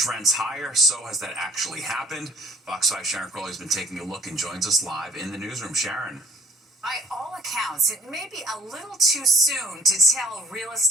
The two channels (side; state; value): both; normal; correlation 0.54